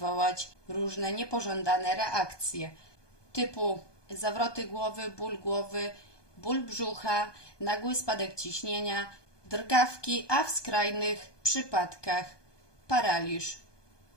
różne niepożądane reakcje typu zawroty głowy, ból brzucha, nagły spadek ciśnienia, drgawki, a w skrajnych przypadkach paraliż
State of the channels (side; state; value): right; late; 1.2 ms